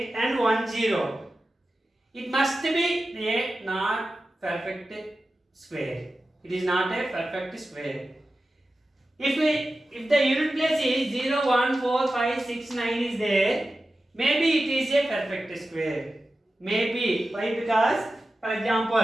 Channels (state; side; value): normal; both; correlation 0.93